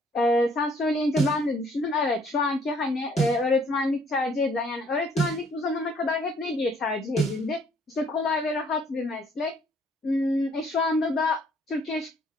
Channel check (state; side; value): normal; both; correlation 0.63